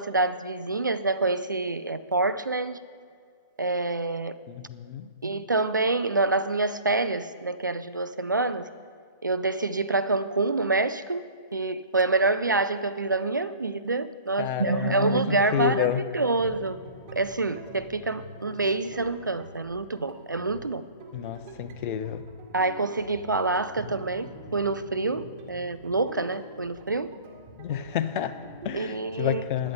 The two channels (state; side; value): inverted; both; correlation -0.45